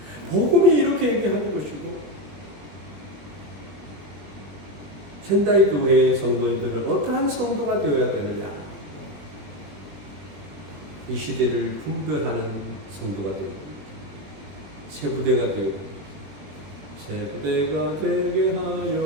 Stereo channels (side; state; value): left; late; 20 ms